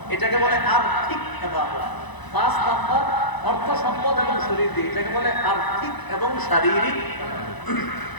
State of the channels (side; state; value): right; late; 1.0 ms